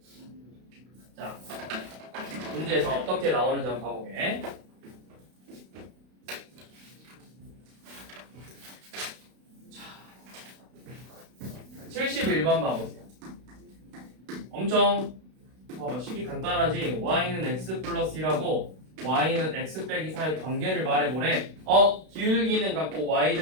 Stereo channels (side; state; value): left; late; 32 ms